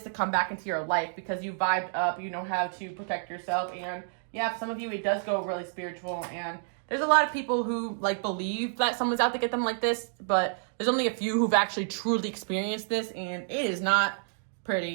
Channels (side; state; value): left; silent; digital silence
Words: to come back into your life because you vibed up, you know how to protect yourself, and yeah, for some of you, it does go really spiritual. And there's a lot of people who like believe that someone's out to get them like this, but there's only a few who've actually truly experienced this, and it is not